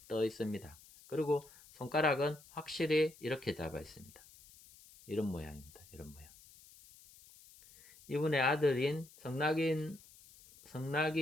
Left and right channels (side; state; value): left; noise; hiss, 23 dB below the sound